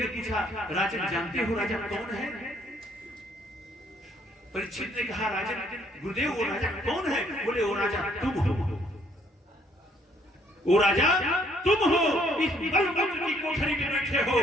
पूछा, राजन जानते हो राजा कौन है? परीक्षित ने कहा, राजन, गुरुदेव वो राजा कौन है? बोले, वो राजा तुम हो, वो राजा तुम हो, इस बलवंत की कोठरी में बैठे हो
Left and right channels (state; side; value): normal; both; correlation 0.66